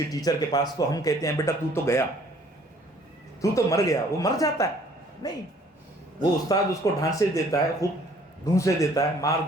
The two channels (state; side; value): normal; both; correlation 0.58